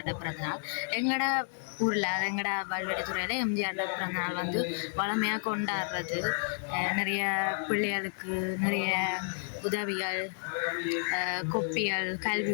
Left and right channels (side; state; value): right; silent; digital silence